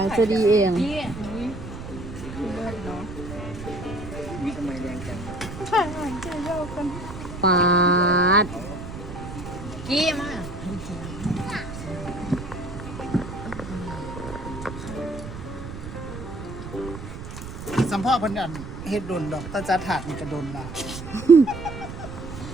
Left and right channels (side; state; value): right; noise; rumble, 10 dB below the sound